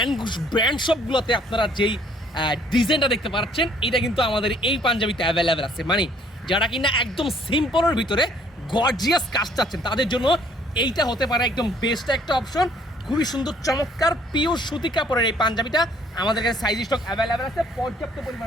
ব্র্যান্ড সবগুলোতে আপনারা যেই ডিজাইনটা দেখতে পাচ্ছেন, এটা কিন্তু আমাদের এই পাঞ্জাবিতে অ্যাভেলেবেল আছে। মানে যারা কিনা একদম সিম্পলের ভিতরে গর্জিয়াস কাজ চাচ্ছেন, তাদের জন্য এইটা হতে পারে একদম বেস্ট একটা অপশন। খুবই সুন্দর চমৎকার পিওর সুতি কাপড়ের এই পাঞ্জাবিটা আমাদের কাছে সাইজ স্টক অ্যাভেলেবেল আছে, পর্যাপ্ত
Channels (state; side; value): normal; both; correlation 0.61